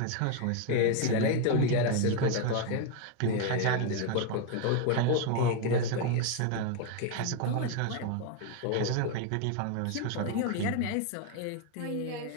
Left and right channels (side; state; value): both; different; correlation 0.01